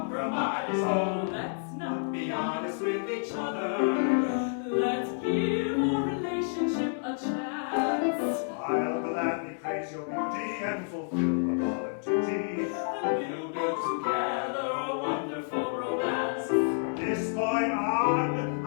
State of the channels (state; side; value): silent; right; digital silence